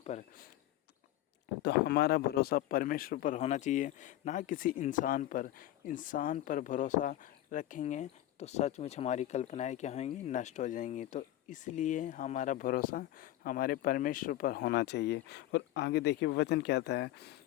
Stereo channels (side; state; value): right; quieter; 14.2 dB